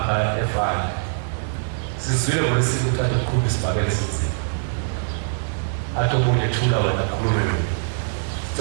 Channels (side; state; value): left; silent; digital silence